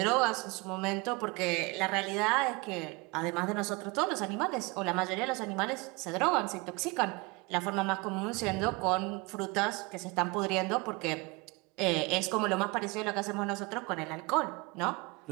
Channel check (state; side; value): quieter; left; 26.4 dB